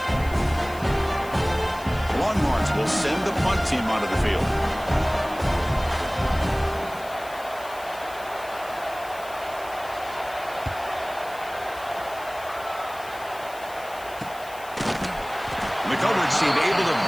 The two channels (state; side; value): noise; left; hiss, 19 dB below the sound